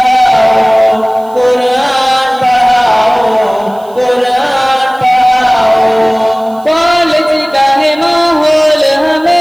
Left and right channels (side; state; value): right; noise; hiss, 28 dB below the sound